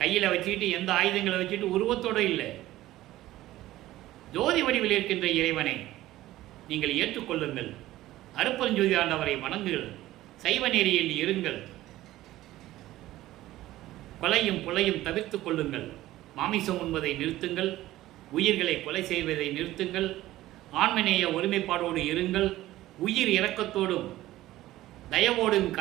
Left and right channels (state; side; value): quieter; left; 15.6 dB